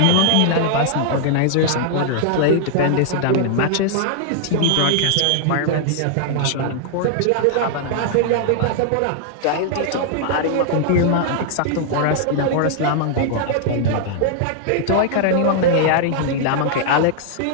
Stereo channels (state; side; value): different; both; correlation -0.01